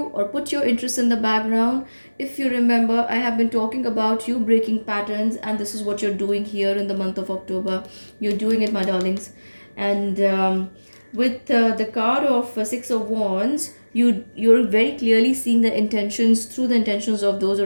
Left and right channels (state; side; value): inverted; both; correlation -1.00